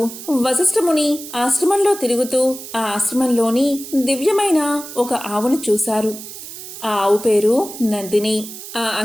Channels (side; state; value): right; noise; hiss, 12 dB below the sound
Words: వశిష్ఠముని ఆశ్రమంలో తిరుగుతూ ఆ ఆశ్రమంలోని దివ్యమైన ఒక ఆవును చూశారు. ఆ ఆవు పేరు నందిని. ఆ